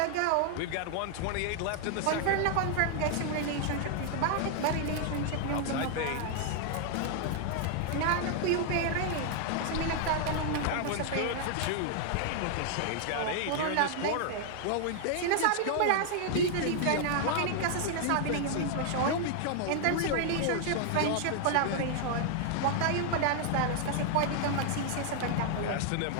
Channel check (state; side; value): different; both; correlation 0.00